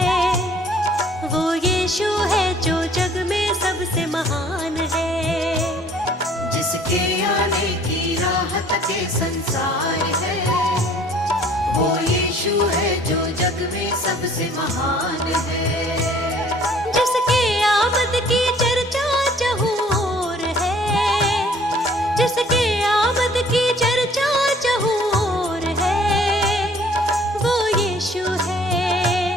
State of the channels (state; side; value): normal; both; correlation 0.56